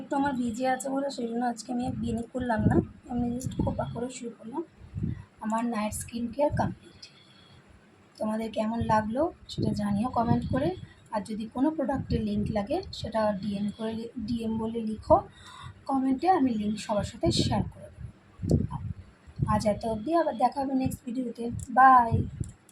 একটু আমার ভিজে আছে বলে সেই জন্য আজকে আমি বিনি করলাম না, আমি জাস্ট খোপা করে শুরু করলাম। আমার নাইট স্কিন কেয়ার কমপ্লিট। তোমাদের কেমন লাগলো সেটা জানিও কমেন্ট করে। আর যদি কোনো প্রোডাক্টের লিঙ্ক লাগে সেটা ডিএম বলে লিখো কমেন্টে, আমি লিঙ্ক সবার সাথে শেয়ার করে দেবো। আজ এত অবধি, আবার দেখা হবে নেক্সট ভিডিওতে। বাই।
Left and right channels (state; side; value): identical; both; correlation 1.00